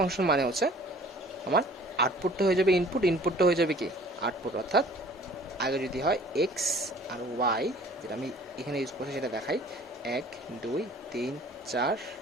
মানে হচ্ছে আমার আউটপুটটা হয়ে যাবে ইনপুট, ইনপুটটা হয়ে যাবে কি আউটপুট। অর্থাৎ আগে যদি হয় এক্স আর ওয়াই, যেটা আমি এখানে ইউজ করছি সেটা দেখাই, 1 2 3 4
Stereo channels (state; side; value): normal; both; correlation 0.51